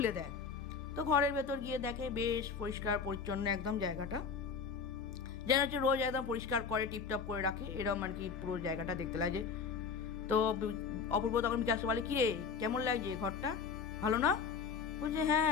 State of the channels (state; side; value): quieter; right; 5.7 dB